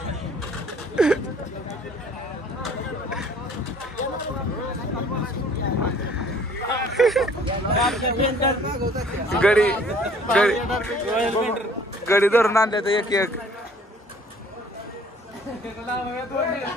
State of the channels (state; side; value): normal; both; correlation 0.55